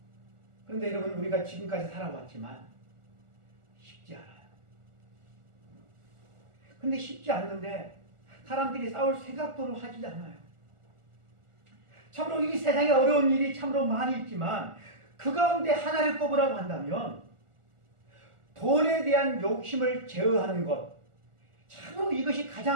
그런데 여러분, 우리가 지금까지 살아왔지만 쉽지 않아요. 근데 쉽지 않는데 사람들이 싸울 생각도 하지 않아요. 참으로 이 세상에 어려운 일이 참으로 많이 있지만 그 가운데 하나를 꼽으라고 한다면 돈에 대한 욕심을 제어하는 것, 참으로 이것이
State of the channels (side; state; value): left; late; 1.4 ms